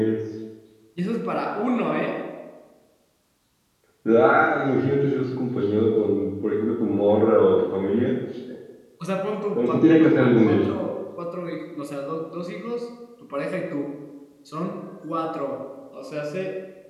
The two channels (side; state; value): both; identical; correlation 1.00